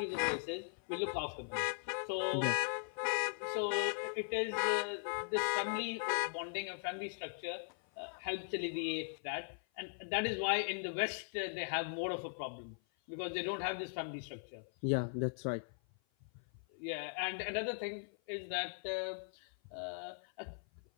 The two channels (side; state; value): right; silent; 51 dB below the other